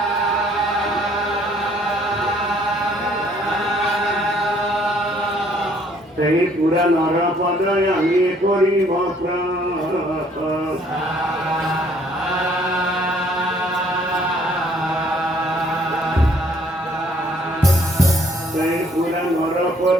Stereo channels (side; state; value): both; normal; correlation 0.62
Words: সেই পুরা নরপদয় আমি করিব